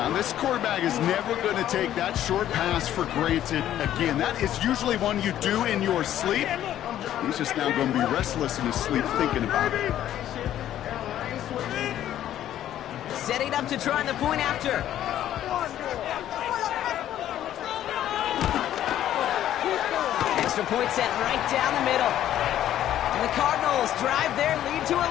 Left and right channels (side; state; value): right; quieter; 11.8 dB